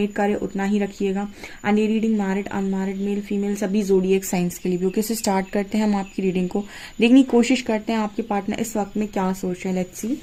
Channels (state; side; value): identical; both; correlation 1.00